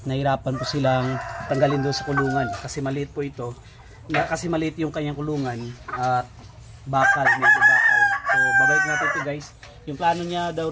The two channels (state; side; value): identical; both; correlation 1.00